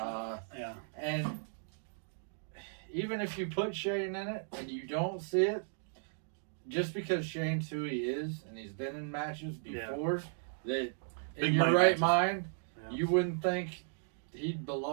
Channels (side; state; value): left; silent; digital silence